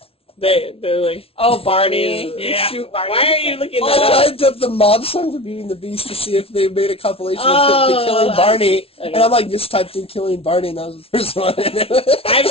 They're like, Oh, Barney. Yeah. Shoot Barney. why are you looking I that up? typed up the mob song for Beauty and the Beast to see if they made a compilation of Oh, Killing Barney, okay. and I'm like, just typed in Killing Barney, and that was the first one. I've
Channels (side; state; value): right; late; 0.27 ms